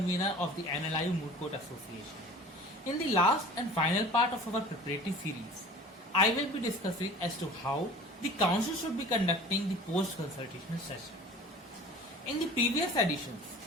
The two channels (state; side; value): normal; both; correlation 0.42